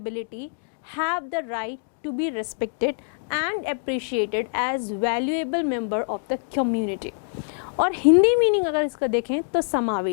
have the right to be respected and appreciated as valuable member of the community। और हिंदी मीनिंग अगर इसका देखें तो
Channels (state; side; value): silent; right; digital silence